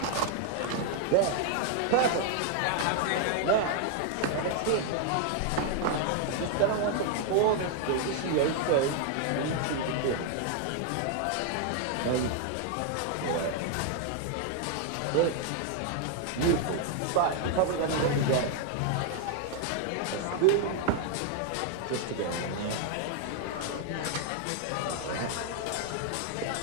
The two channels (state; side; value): different; both; correlation 0.00